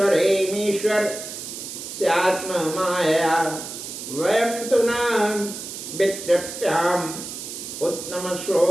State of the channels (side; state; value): right; noise; hiss, 9 dB below the sound